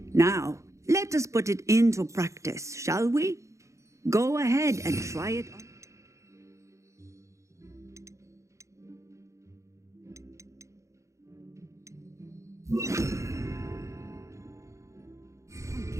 Now, let us put it into practice, shall we? Go ahead and try it on.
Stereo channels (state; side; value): late; left; 0.15 ms